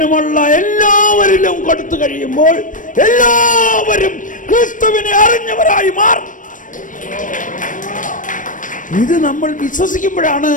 എല്ലാവരിലും കൊടുത്തു കഴിയുമ്പോൾ എല്ലാവരും ക്രിസ്തുവിനെ അറിഞ്ഞവരായി മാറും. ഇത് നമ്മൾ വിശ്വസിക്കുമ്പോഴാണ്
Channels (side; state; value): right; late; 0.38 ms